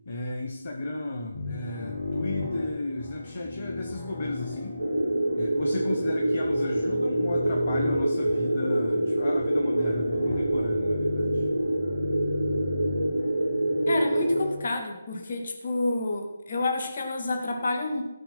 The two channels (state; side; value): inverted; both; correlation -0.90